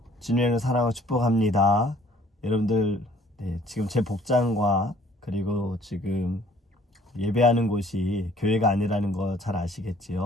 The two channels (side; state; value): both; normal; correlation 0.57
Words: 주님을 사랑하고 축복합니다. 여러분들, 지금 제 복장과 그리고 지금 예배하는 곳이 교회가 아니라는 거 잘